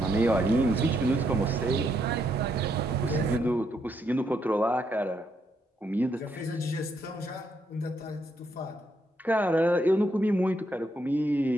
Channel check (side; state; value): both; normal; correlation 0.76